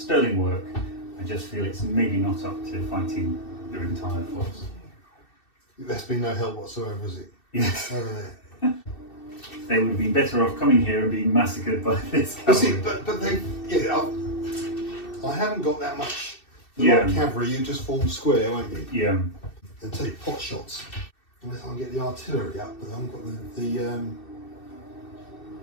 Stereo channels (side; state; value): right; late; 2.7 ms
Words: work. I just feel it's maybe not up to fighting their entire force. That's been no help whatsoever, is it? Yes. Over there. They would have been better off coming here and being massacred by this But see, cavalry. but they, yeah, I haven't got that much. The Yeah. light cavalry, you just form square, won't you? Yeah. And take pot shots. Unless I can get the artillery up, but I haven't got the